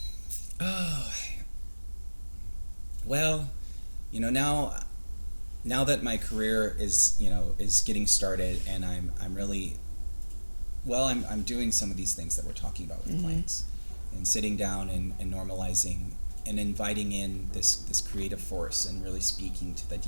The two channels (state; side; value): inverted; both; correlation -1.00